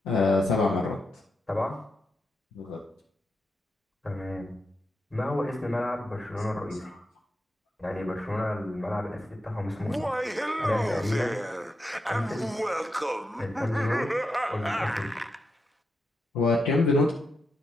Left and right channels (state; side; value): normal; both; correlation 0.85